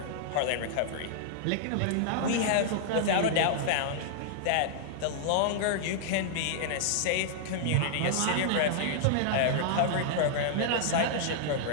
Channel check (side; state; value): both; different; correlation -0.01